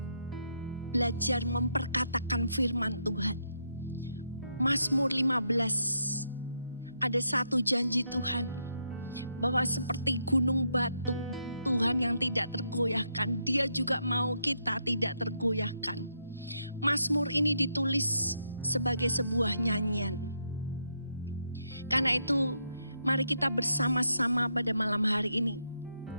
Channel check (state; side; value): inverted; both; correlation -0.79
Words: belajar memperkatakan firman Tuhan. Mazmur 15. Ada satu janji Tuhan. Bahwa seperti gunung batu. Tuhan yang tidak tergoyahkan. Dia juga mau kita tidak tergoyahkan. Mazmur ini ditulis sebagai sebuah nyanyian. Karena itu mari kita bersama-sama pada malam hari ini.